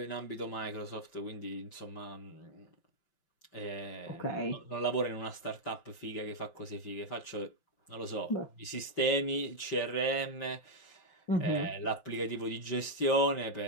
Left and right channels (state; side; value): late; right; 5.8 ms